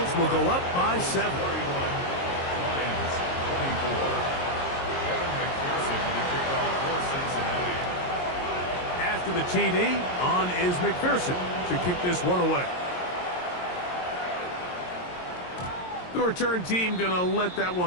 will go up by 7. Lions 24. Evan McPherson to kick off for Cincinnati. After the TD, on is McPherson to kick this one away. The return team going to let that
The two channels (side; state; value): right; late; 22 ms